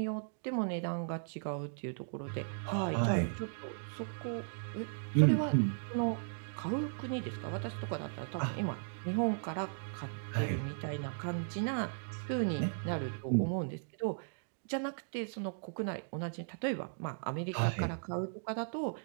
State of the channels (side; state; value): left; silent; digital silence